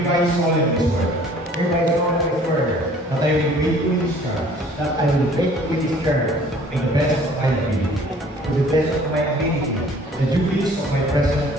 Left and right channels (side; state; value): both; normal; correlation 0.53